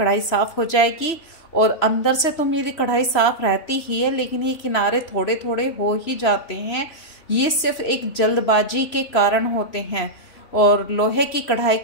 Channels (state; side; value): late; right; 3.0 ms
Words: साफ़ हो जाएगी। और अंदर से तो मेरी कढ़ाई साफ़ रहती ही है, लेकिन ये किनारे थोड़े थोड़े हो ही जाते हैं। ये सिर्फ एक जल्दबाजी के कारण होते हैं, और लोहे की कढ़ाई